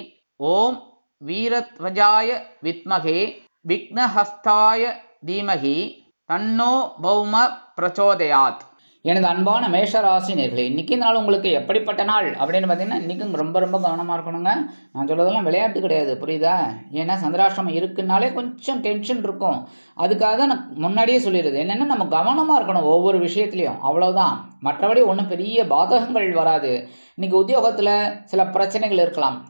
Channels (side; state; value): both; inverted; correlation -1.00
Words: ஓம் வீரத்வஜாய வித்மகே விக்னஹஸ்தாய தீமகி தன்னோ பௌம பிரச்சோதயாத். எனது அன்பான மேஷராசி நேர்களே, இன்னைக்கு நாள் உங்களுக்கு எப்படிப்பட்ட நாள் அப்படின்னு பார்த்தீங்கன்னா, இன்னைக்கும் ரொம்ப ரொம்ப கவனமாக இருக்கணுங்க. நான் சொல்றதெல்லாம் விளையாட்டு கிடையாது, புரியுதா? ஏன்னா சந்திராஷ்டமம் இருக்குனாலே கொஞ்சம் டென்ஷன் இருக்கும். அதுக்காக தான் நான் முன்னாடியே சொல்லிடுது என்னன்னா, நம்ம கவனமாக இருக்கணும் ஒவ்வொரு விஷயத்துலையும், அவ்வளவுதான். மற்றபடி ஒன்றும் பெரிய பாதகங்கள் வராது. இன்னைக்கு உத்தியோகத்தில் சில பிரச்சனைகள் இருக்கலாம்,